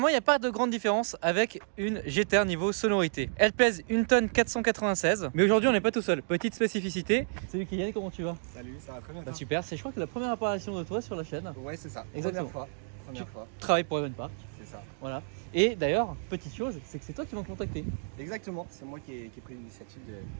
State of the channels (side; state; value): left; silent; digital silence